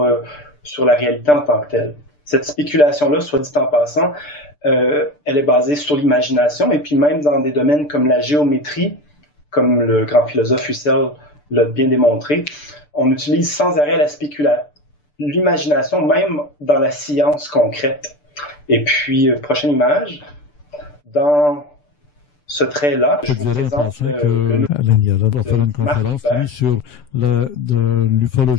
la réalité en tant que telle. Cette spéculation-là, soit dit en passant, elle est basée sur l'imagination, et puis même dans des domaines comme la géométrie, comme le grand philosophe Husserl l'a bien démontré, on utilise sans arrêt l'imagination, même dans la science concrète. Et puis, prochaine image, dans ce trait-là, je vous présente le nouveau de Marc Hubert. Sur de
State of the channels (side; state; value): right; late; 6.8 ms